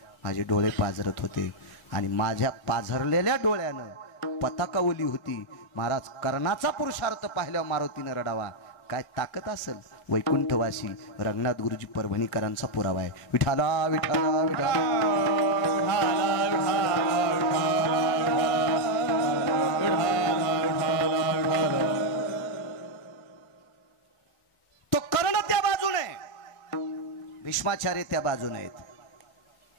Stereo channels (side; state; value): right; late; 1.6 ms